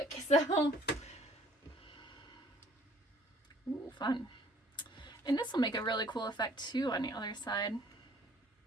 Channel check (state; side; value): normal; both; correlation 0.57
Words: so ooh, fun. And this will make a really cool effect too on the other side.